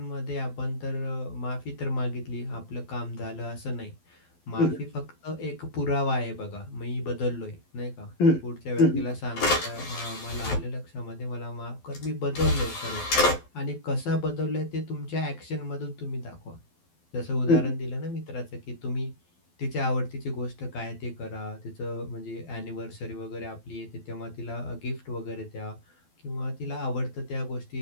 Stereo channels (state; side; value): late; right; 12 ms